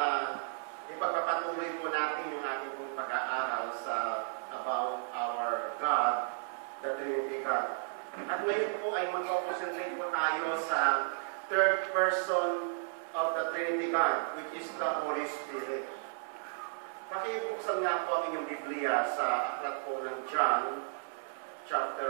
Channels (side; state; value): left; silent; 55 dB below the other